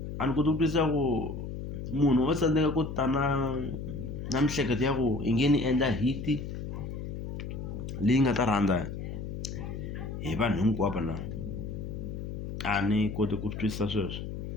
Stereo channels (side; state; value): left; noise; hum, 6 dB below the sound